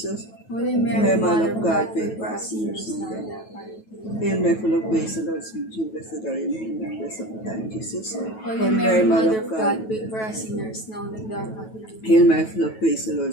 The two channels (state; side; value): late; right; 9.2 ms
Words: Holy Mary, Mother of God, pray for us sinners now and at our hour of death. Hail Mary, full of grace, the Lord is with you. Blessed are you among women, blessed of the time, Jesus. Holy Mary, Mother of God, pray for us sinners now and at our hour of death. Hail Mary, full of grace, the Lord